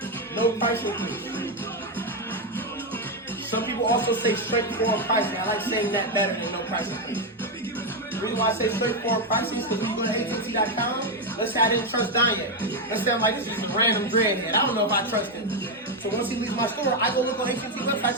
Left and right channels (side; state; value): both; normal; correlation 0.05